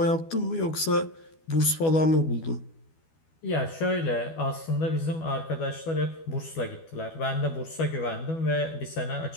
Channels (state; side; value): late; right; 12 ms